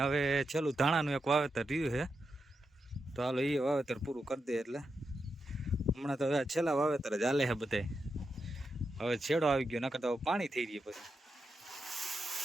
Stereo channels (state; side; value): normal; both; correlation 0.86